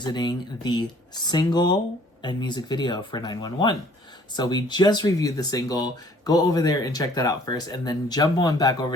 the single and music video for 911. So we just reviewed the single. Go over there and check that out first. And then jump on back over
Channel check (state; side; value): normal; both; correlation 0.57